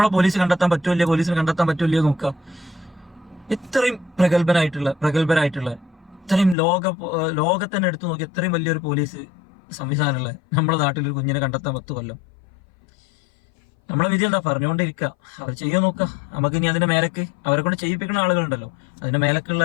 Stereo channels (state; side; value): drops out; right; at 6.6 s